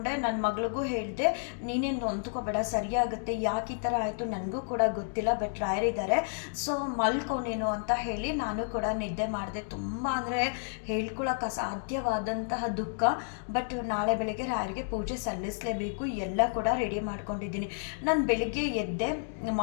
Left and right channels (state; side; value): silent; right; digital silence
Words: ನನ್ನ ಮಗಳಿಗೂ ಹೇಳಿದೆ, ನೀನೇನು ನೊಂದ್ಕೋಬೇಡ, ಸರಿಯಾಗುತ್ತೆ. ಯಾಕೆ ಈ ಥರ ಆಯಿತು ನನಗೂ ಕೂಡ ಗೊತ್ತಿಲ್ಲ, ಬಟ್ ರಾಯರಿದ್ದಾರೆ, ಸೊ ಮಲ್ಕೊಂಡೇನು ಅಂತ ಹೇಳಿ ನಾನು ಕೂಡ ನಿದ್ದೆ ಮಾಡಿದೆ. ತುಂಬ ಅಂದರೆ ಹೇಳ್ಕೊಳಕ್ಕೆ ಅಸಾಧ್ಯವಾದಂತಹ ದುಃಖ. ಬಟ್ ನಾಳೆ ಬೆಳಗ್ಗೆ ರಾಯರಿಗೆ ಪೂಜೆ ಸಲ್ಲಿಸಲೇಬೇಕು. ಎಲ್ಲ ಕೂಡ ರೆಡಿ ಮಾಡ್ಕೊಂಡಿದ್ದೀನಿ. ನಾನು ಬೆಳಿಗ್ಗೆ ಎದ್ದೆ,